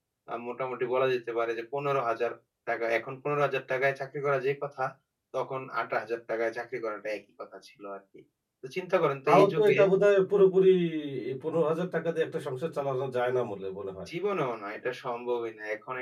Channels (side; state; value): both; identical; correlation 1.00